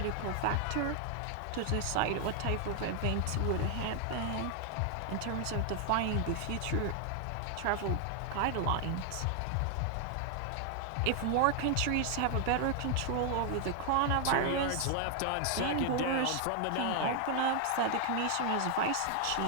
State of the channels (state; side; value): different; both; correlation 0.00